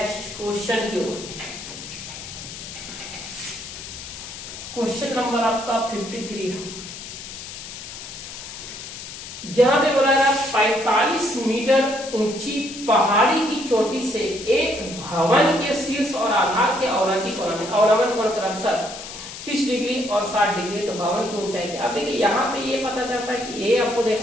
क्वेश्चन की ओर। क्वेश्चन नंबर आपका 53 है। यहाँ पे बोला गया 45 मीटर ऊंची पहाड़ी की चोटी से एक भवन के शीर्ष और आधार के अवनति कोण में, अवनमन कोण क्रमशः 30 डिग्री और 60 डिग्री, तो भवन की ऊंचाई क्या। अब देखिए यहाँ पे ये पता चलता है कि ये आपको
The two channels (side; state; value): left; noise; hiss, 11 dB below the sound